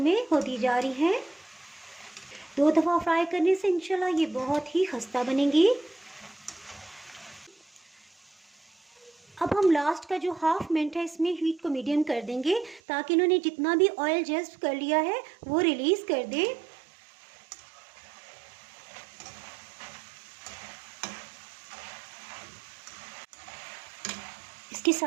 में होती जा रही हैं। 2 दफ़ा फ्राई करने से इंशाल्लाह ये बहुत ही खस्ता बनेंगी। अब हम लास्ट का जो हाफ मिनट है इसमें हीट को मीडियम कर देंगे ताकि इन्होंने जितना भी ऑयल जज़्ब कर लिया है वो रिलीज़ कर दें। इसके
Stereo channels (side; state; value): left; drops out; at 12.8 s